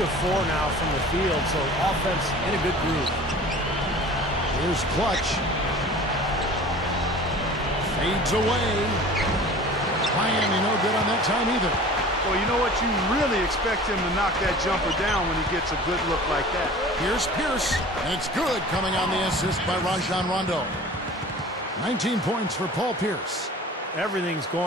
4 now from the field, so offense in a good groove. Here's Clutch. Fades away. Miami no good on that time either. Well, you know what? You really expect him to knock that jumper down when he gets a good look like that. Here's Pierce. And it's good coming on the assist by Rajon Rondo. 19 points for Paul Pierce. Everything's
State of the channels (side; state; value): both; normal; correlation 0.42